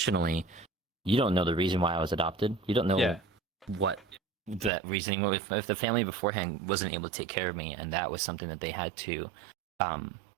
you don't know the reason why I was adopted. You don't know what that reasoning. If the family beforehand wasn't able to take care of me, and that was something that they had to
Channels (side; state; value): left; drops out; at 4.7 s